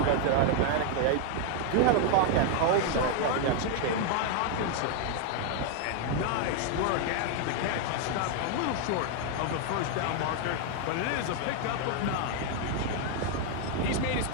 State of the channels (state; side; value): different; both; correlation 0.00